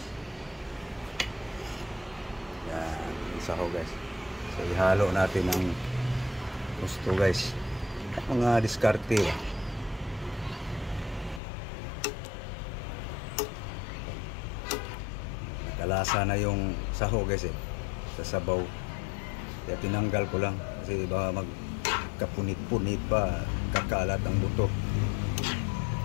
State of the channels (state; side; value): drops out; right; at 11.4 s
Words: Yan, sahog guys. So ihalo natin ng husto guys. Mga diskarte. Nakalasa na yung sahog guys sa sabaw. Kaya tinanggal ko lang kasi baka magkapunit-punit pa, kakalat ang buto.